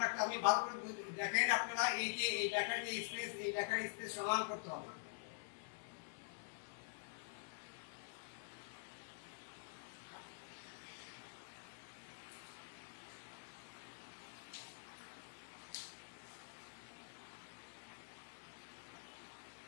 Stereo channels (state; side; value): silent; right; digital silence